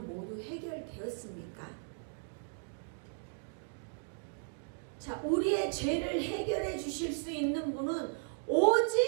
모두 해결되었습니까? 자, 우리의 죄를 해결해 주실 수 있는 분은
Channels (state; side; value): silent; left; digital silence